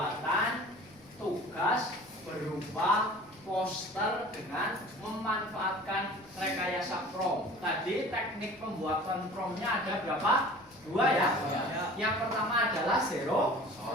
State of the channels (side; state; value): left; noise; rumble, 29 dB below the sound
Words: tugas berupa poster dengan memanfaatkan rekayasa prompt. Tadi teknik pembuatan promptnya ada berapa? 2 ya? Yang pertama adalah zero